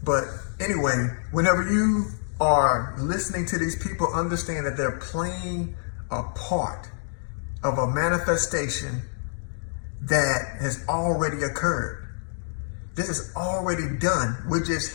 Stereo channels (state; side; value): silent; right; digital silence